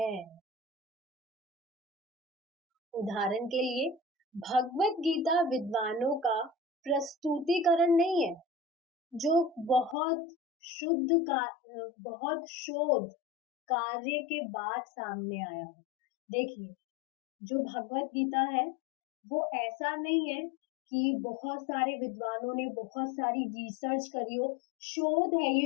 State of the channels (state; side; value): drops out; right; at 10.0 s